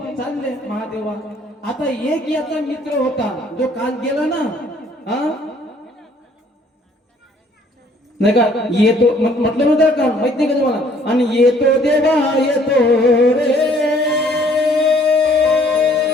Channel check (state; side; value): normal; both; correlation 0.60